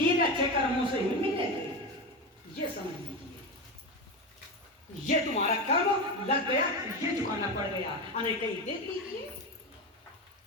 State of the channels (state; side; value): normal; both; correlation 0.18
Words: अच्छे कर्मों से ही मिलेगी। ये समझ लीजिए, ये तुम्हारा कर्म लग गया, ये चुकाना पड़ गया, अने कहीं दे दीजिए।